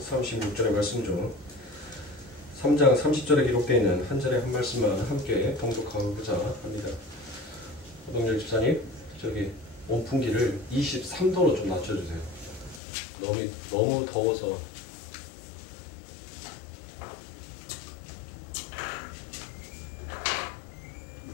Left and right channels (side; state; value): right; drops out; at 12.8 s